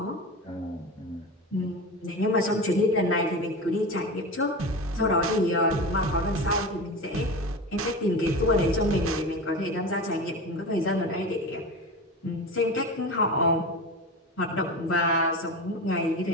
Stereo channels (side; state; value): both; normal; correlation 0.27